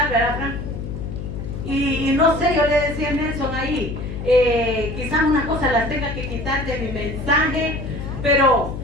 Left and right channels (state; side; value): noise; left; hum, 7 dB below the sound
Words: ¿verdad, Frank? Y no sé, yo le decía a Nelson ahí, quizás unas cosas las tenga que quitar de mi mensaje, pero